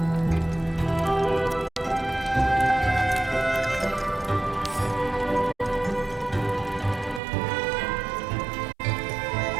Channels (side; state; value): left; drops out; at 7.2 s